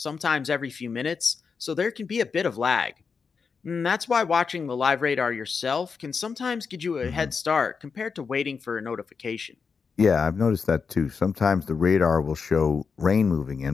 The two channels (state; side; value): quieter; right; 5.5 dB